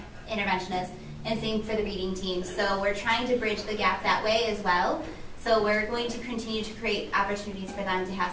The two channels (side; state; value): both; identical; correlation 1.00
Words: interventionists, and same for the reading team. So we're trying to bridge the gap that way as well. So we're going to continue to create opportunities for them to have